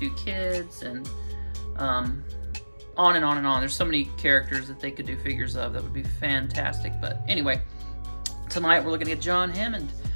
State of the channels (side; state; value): both; inverted; correlation -1.00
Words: kids, and on and on and on. There's so many characters that they could do figures of that would be fantastic. But anyway, tonight we're looking at John Hammond.